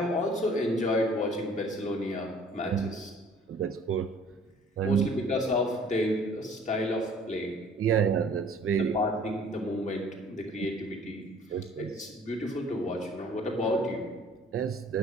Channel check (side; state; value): both; normal; correlation 0.53